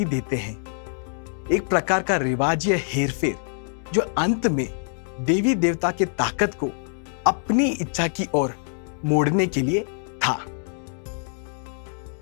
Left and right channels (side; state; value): right; silent; digital silence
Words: देते हैं। एक प्रकार का रिवाज या हेरफेर जो अंत में देवी देवता के ताकत को अपनी इच्छा की ओर मोड़ने के लिए था।